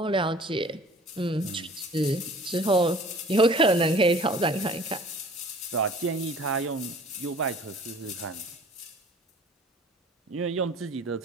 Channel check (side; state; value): both; normal; correlation 0.49